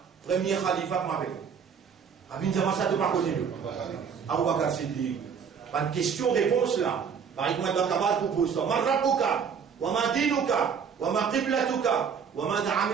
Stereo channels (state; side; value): quieter; left; 6.7 dB